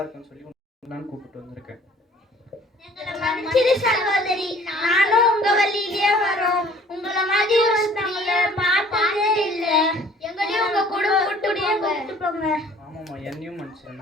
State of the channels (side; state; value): both; normal; correlation 0.53